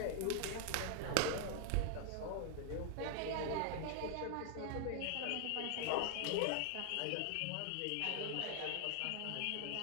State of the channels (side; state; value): both; different; correlation 0.00